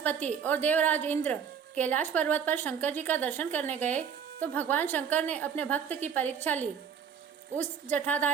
और देवराज इंद्र कैलाश पर्वत पर शंकर जी का दर्शन करने गए तो भगवान शंकर ने अपने भक्त की परीक्षा ली। उस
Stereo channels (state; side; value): quieter; left; 7.4 dB